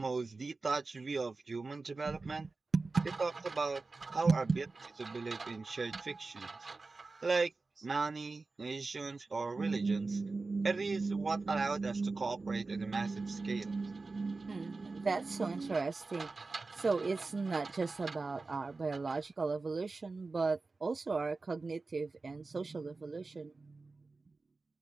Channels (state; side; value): quieter; left; 3.8 dB